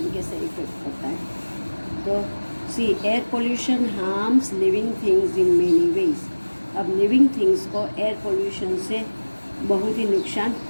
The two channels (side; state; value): both; inverted; correlation -1.00